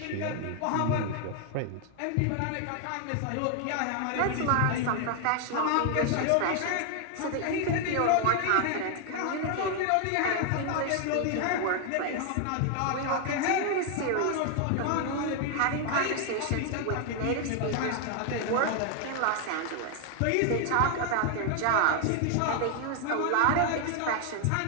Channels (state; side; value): different; both; correlation 0.00